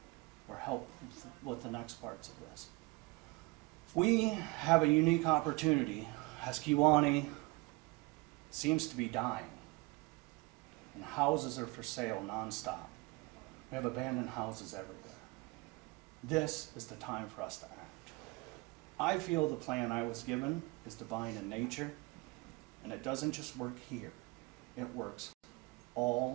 or help with the next parts of this. We have a unique opportunity as Kewanee seems to be dying, and houses are for sale nonstop. We have abandoned houses everywhere. This is the time for us to act. I feel the plan I was given is divine in nature, and it doesn't just work here. It works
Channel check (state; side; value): quieter; left; 25.4 dB